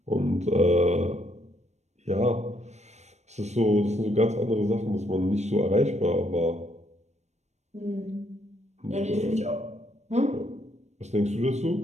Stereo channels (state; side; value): late; left; 0.33 ms